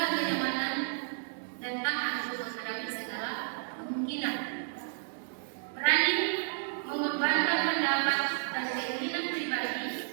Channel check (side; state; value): left; silent; digital silence